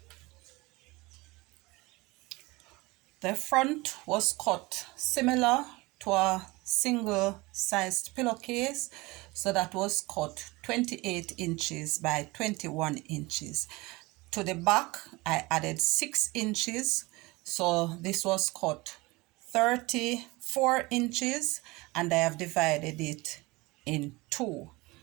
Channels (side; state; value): left; quieter; 22.8 dB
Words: The front was cut similar to a single-sized pillowcase, so that was cut 28 inches by 21 inches. To the back I added 6 inches, so this was cut 34 inches, and I have divided it in two.